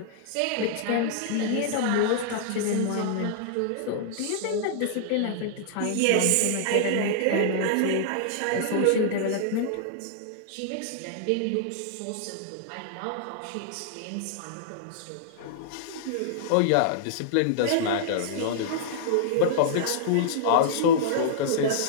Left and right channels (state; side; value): different; both; correlation -0.01